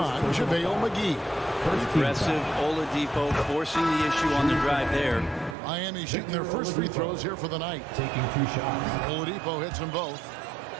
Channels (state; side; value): drops out; left; at 5.6 s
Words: JaVale McGee. Aggressive Oladipo forcing the issue on the drive there. Miami shooting their first free throws here for the night. Taking 2 shots. Oladipo hits them both.